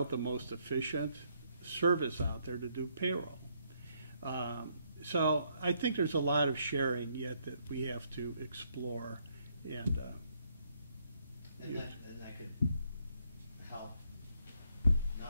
the most efficient service out there to do payroll. So I think there's a lot of sharing yet that we have to explore, and that could help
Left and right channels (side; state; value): both; inverted; correlation -0.72